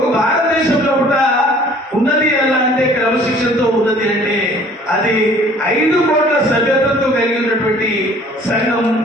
భారతదేశంలో కూడా ఉన్నది ఎలా అంటే, క్రమశిక్షణతో ఉన్నది అంటే అది 5 కోట్ల సభ్యత్వంతో కలిగి ఉన్నటువంటి సంఘం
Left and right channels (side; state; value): both; normal; correlation 0.53